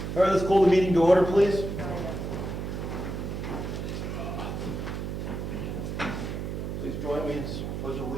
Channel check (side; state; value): right; noise; hum, 4 dB below the sound